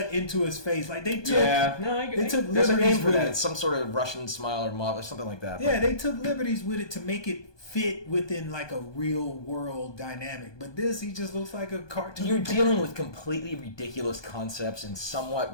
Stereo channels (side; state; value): right; late; 1.2 ms